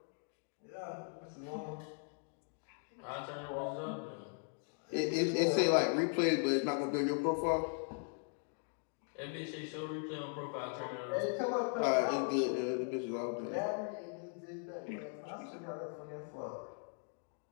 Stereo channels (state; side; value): silent; right; 52 dB below the other